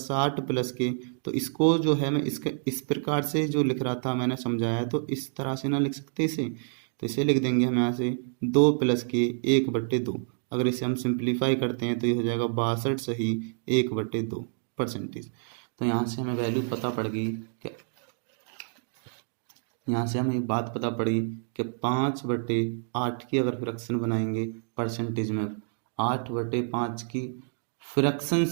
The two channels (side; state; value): left; silent; digital silence